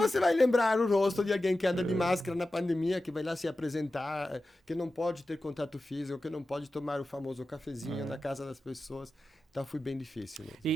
vai lembrar o rosto de alguém que anda de máscara na pandemia, que vai lá se apresentar, que não pode ter contato físico, que não pode tomar o famoso cafezinho na casa das pessoas? Então foi bem difícil mesmo.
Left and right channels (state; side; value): normal; both; correlation 0.93